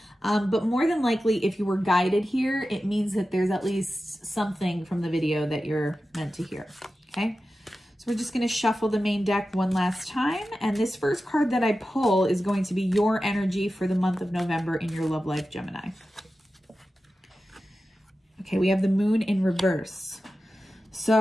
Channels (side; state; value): both; normal; correlation 0.93